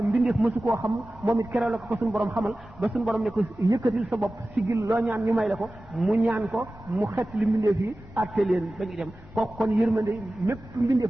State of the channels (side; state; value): both; normal; correlation 0.96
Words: mbindeef mësu koo xam moom it keroog la ko suñu borom xamal ba suñu borom ne ko yëkkatil sa bopp sigil loo ñaan ñu may la ko mu ñaan ko mu xeetali mbindeef yi atte leen ba ñu dem kooku kon yërmande mépp